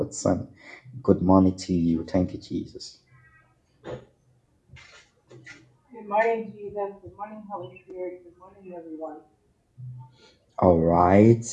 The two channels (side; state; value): both; identical; correlation 1.00